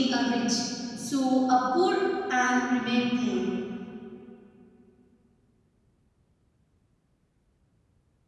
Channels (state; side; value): identical; both; correlation 1.00